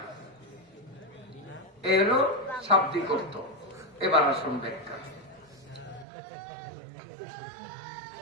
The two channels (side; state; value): left; drops out; at 6.1 s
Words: এরও শাব্দিক অর্থ। এবার আসুন ব্যাখ্যা।